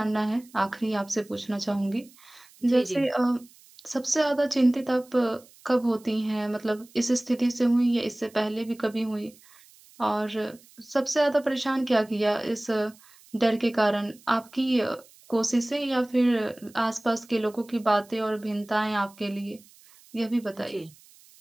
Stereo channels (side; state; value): right; noise; hiss, 26 dB below the sound